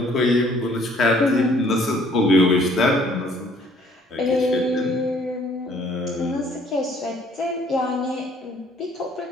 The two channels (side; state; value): both; normal; correlation 0.60